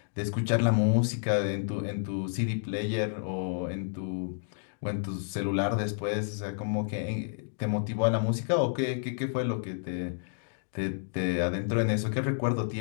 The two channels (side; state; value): right; silent; digital silence